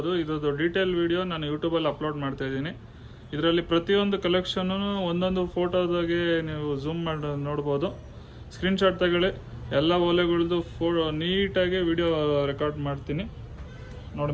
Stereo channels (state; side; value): identical; both; correlation 1.00